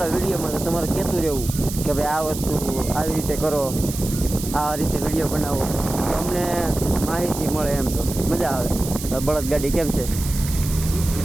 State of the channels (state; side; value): noise; right; hiss, 9 dB below the sound